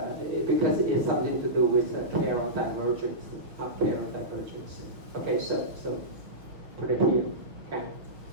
because it's something to do with Carroll divergence, not Carroll divergence. Okay, so put it here. Okay,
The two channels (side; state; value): left; late; 6.2 ms